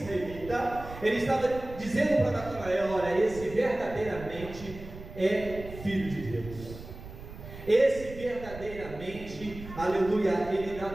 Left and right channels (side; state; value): right; noise; rumble, 14 dB below the sound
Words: Ele estava dizendo para Natanael: olha, esse verdadeiramente é filho de Deus. Esse verdadeiramente, aleluia, ele dá